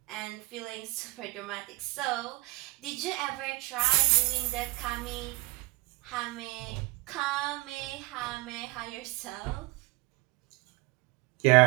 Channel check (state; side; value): quieter; left; 23.0 dB